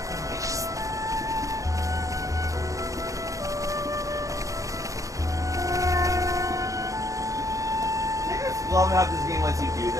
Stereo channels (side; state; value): left; late; 0.16 ms